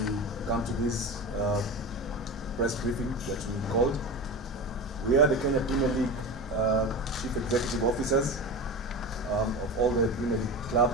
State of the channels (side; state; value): both; normal; correlation 0.27